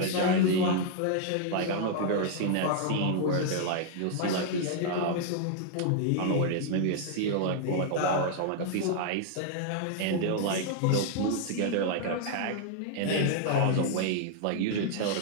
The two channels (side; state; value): both; different; correlation 0.00